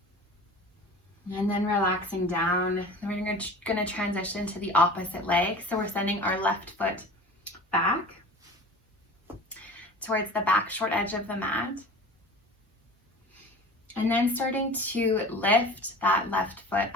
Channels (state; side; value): normal; both; correlation 0.39